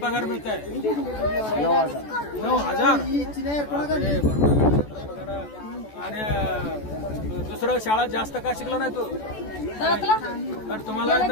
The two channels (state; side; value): late; right; 14 ms